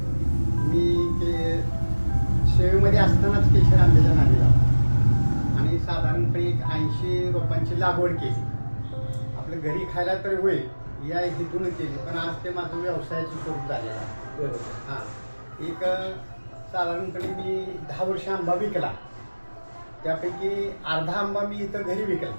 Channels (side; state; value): both; inverted; correlation -1.00